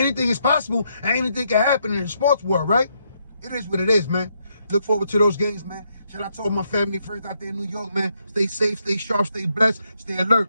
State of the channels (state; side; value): inverted; both; correlation -0.76